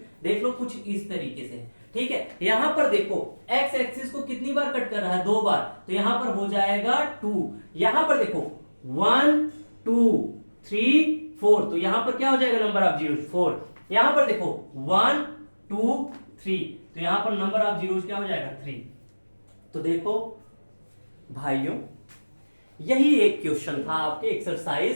देख लो, कुछ इस तरीके से। ठीक है, यहां पर देखो एक्स एक्सिस को कितनी बार कट कर रहा है? 2 बार। तो यहां पर हो जाएगा 2। यहां पर देखो 1 2 3 4, तो यहां पर क्या हो जाएगा नंबर ऑफ जीरोज 4। यहां पर देखो 1 2 3, तो यहां पर नंबर ऑफ जीरोज क्या हो जाएगा 3। तो देखो भाइयों, यही एक क्वेश्चन था आपके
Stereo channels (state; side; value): inverted; both; correlation -1.00